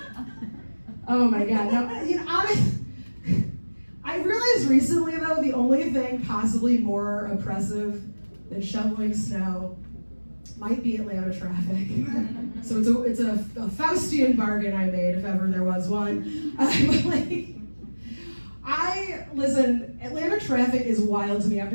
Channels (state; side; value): inverted; both; correlation -1.00